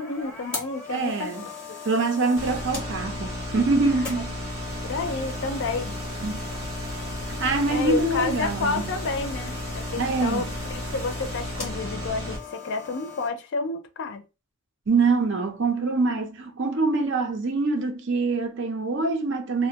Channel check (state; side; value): normal; both; correlation 0.35